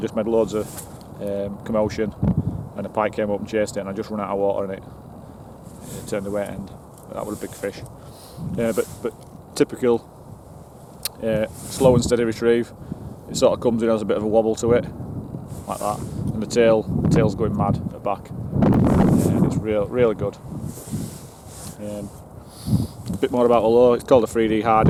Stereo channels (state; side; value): identical; both; correlation 1.00